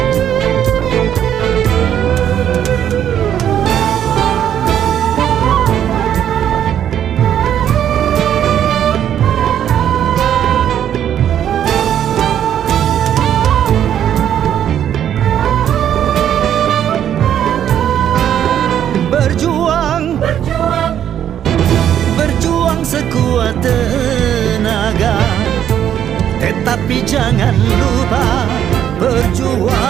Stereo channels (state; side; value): quieter; left; 10.0 dB